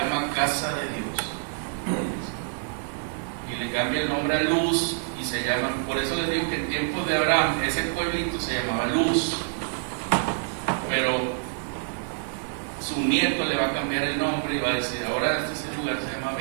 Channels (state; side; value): silent; left; digital silence